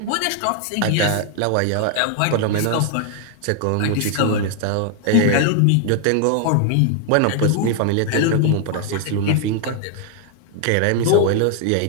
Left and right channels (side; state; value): both; different; correlation 0.00